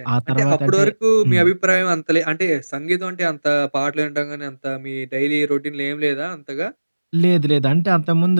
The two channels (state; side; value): inverted; both; correlation -1.00